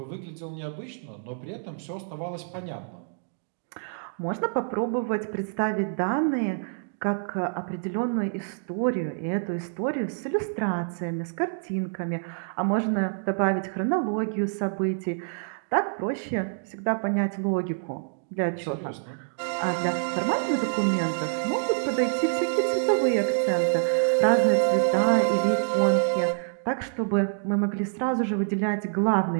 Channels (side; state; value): left; silent; digital silence